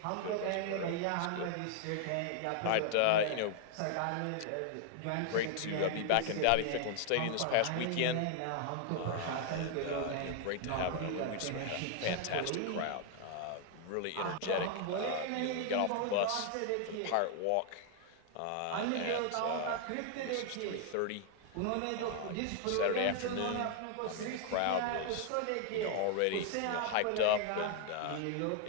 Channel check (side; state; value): both; different; correlation 0.00